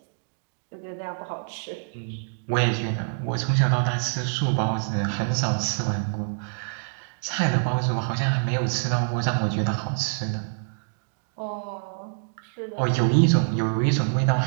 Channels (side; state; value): left; silent; digital silence